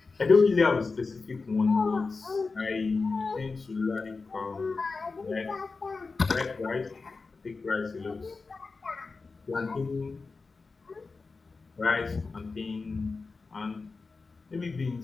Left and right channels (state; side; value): quieter; right; 4.2 dB